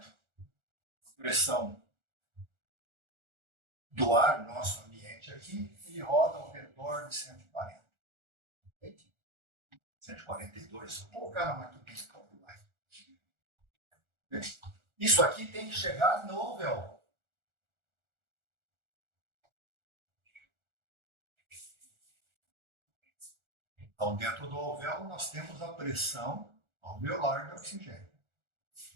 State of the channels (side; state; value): left; late; 1.4 ms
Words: Pressão do ar, nosso ambiente aqui, ele roda ao redor de 140. 142. Vou colocar na maquininha de calcular. Isso aqui tem que chegar no alvéolo. Então, dentro do alvéolo, nós temos a pressão alveolar de oxigênio.